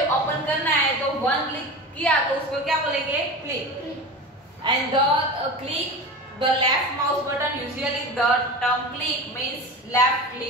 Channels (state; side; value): normal; both; correlation 0.30